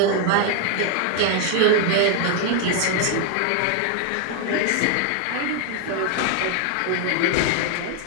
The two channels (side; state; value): both; different; correlation 0.01